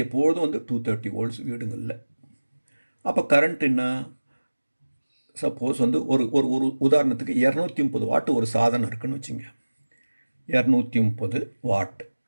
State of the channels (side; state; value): both; inverted; correlation -1.00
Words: எப்பொழுதும் வந்து 230 வோல்ட்ஸ் வீடுங்களில். அப்போ கரண்ட் என்ன? சப்போஸ் வந்து ஒரு ஒரு உதாரணத்துக்கு 230 வாட் ஒரு சாதனம் இருக்குன்னு வச்சுங்க. 230 வாட்.